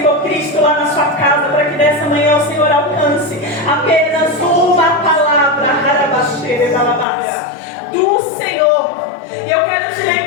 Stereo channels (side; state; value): right; drops out; at 7.1 s